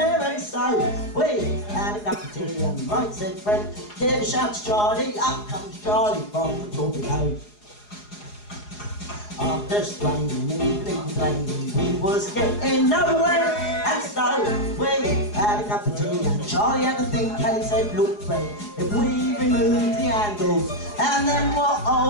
and so we had a cup of tea, and right, said Fred, give a shout to Charlie, up comes Charlie from the torpedo. After straining, even complaining, we was getting nowhere, and so we had a cup of tea, and Charlie had a think, and he said, look Fred, if we remove the handles, and then we'll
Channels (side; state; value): right; late; 4.8 ms